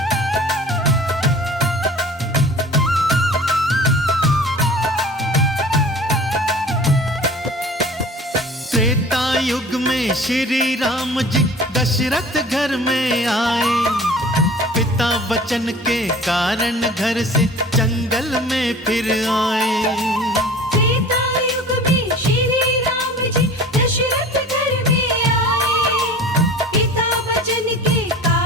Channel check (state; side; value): normal; both; correlation 0.42